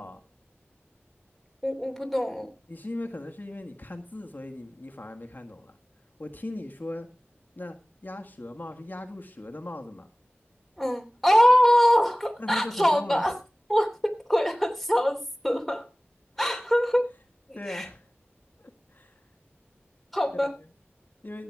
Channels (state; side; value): normal; both; correlation 0.98